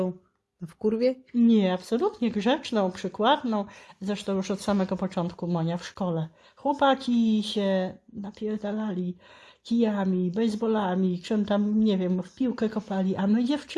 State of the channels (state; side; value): identical; both; correlation 1.00